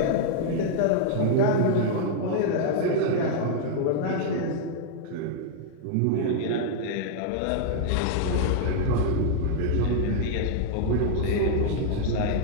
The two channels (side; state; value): both; different; correlation -0.01